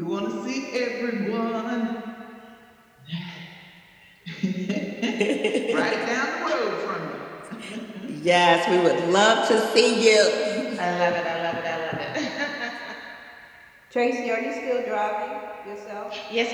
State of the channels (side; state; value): both; identical; correlation 1.00